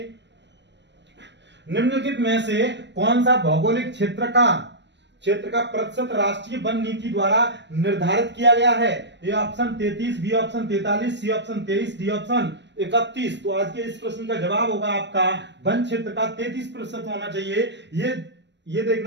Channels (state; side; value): late; left; 0.51 ms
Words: निम्नलिखित में से कौन सा भौगोलिक क्षेत्र का प्रतिशत राष्ट्रीय वन नीति द्वारा निर्धारित किया गया है? A option 33, B option 43, C option 23, D option 31। तो आज के इस प्रश्न का जवाब होगा आपका वन क्षेत्र का 33% होना चाहिए। ये